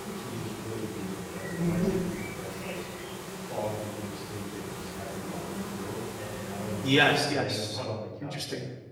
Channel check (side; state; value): both; identical; correlation 1.00